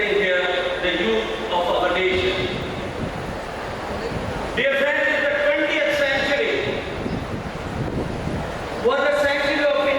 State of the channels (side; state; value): both; identical; correlation 1.00